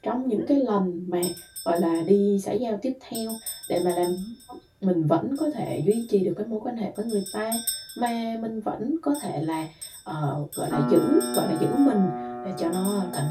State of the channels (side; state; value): both; identical; correlation 1.00